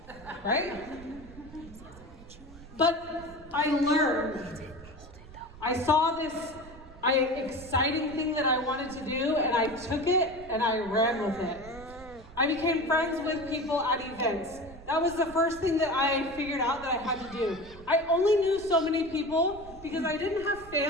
Right? But I learned. I saw this exciting thing that I wanted to do, and I took it and I ran with it. I became friends with people at events. That was the first thing that I figured out that I had to do. I only knew so many people because I didn't have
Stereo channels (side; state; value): right; noise; rumble, 18 dB below the sound